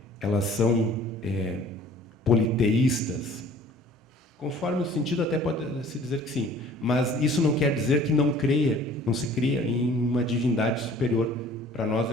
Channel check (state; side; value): normal; both; correlation 0.51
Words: elas são politeístas. Conforme o sentido, até pode se dizer que sim, mas isso não quer dizer que não se cria em uma divindade superior. Para nós